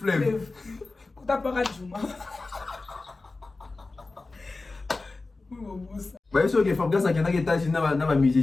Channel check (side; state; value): right; quieter; 3.5 dB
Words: T'as pas radiouma. Même si que Fabrice a quelqu'un qui est assis dans un